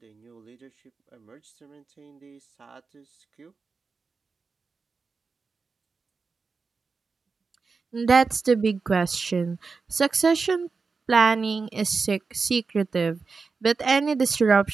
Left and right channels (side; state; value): left; quieter; 4.6 dB